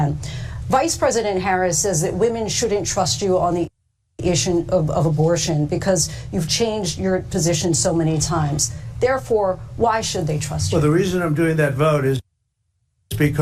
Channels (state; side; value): identical; both; correlation 1.00